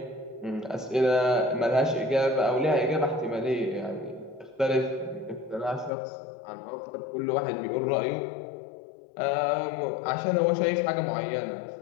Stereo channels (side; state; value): right; drops out; at 5.9 s